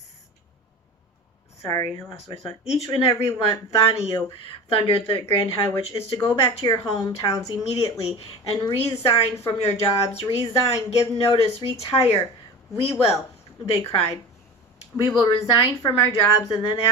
Sorry, I lost my thought. Each and every one of you, thundered the Grand High Witch, is to go back to your hometowns immediately and resign from your jobs. Resign, give notice, retire. We will, they cried. We will resign from our jobs, and then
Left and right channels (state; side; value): normal; both; correlation 0.32